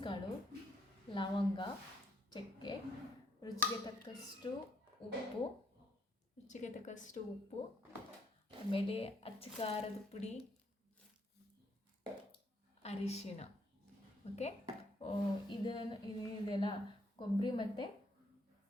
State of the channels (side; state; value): both; normal; correlation 0.71